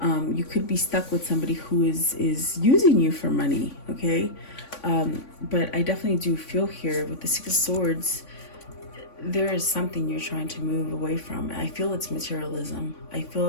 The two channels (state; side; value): late; right; 3.5 ms